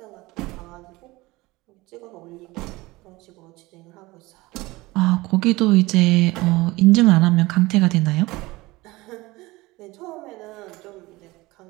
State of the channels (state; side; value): quieter; left; 20.9 dB